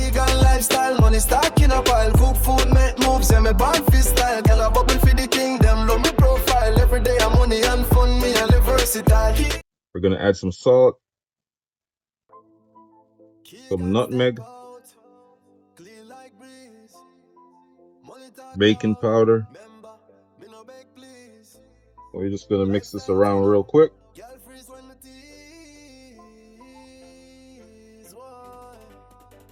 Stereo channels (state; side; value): identical; both; correlation 1.00